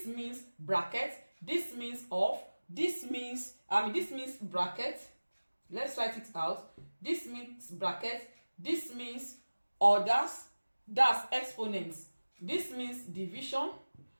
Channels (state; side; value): inverted; both; correlation -1.00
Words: means bracket, this means of, this means bracket. Let's write it out. This means bracket, this means orders, that's exponents. This means division,